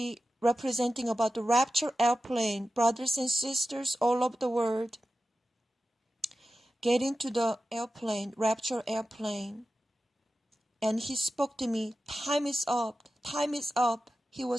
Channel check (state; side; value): normal; both; correlation 0.93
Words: representing about the rapture airplane. Brothers and sisters all over the world. Get into the airplane, rapture airplane. And he spoke to me, time is up, time is up. He